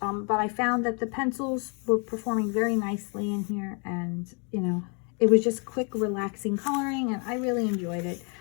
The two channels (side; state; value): right; quieter; 36.7 dB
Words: But I found that the pencils were performing very nicely in here, and you know, it was just quick, relaxing coloring, and I really enjoyed it.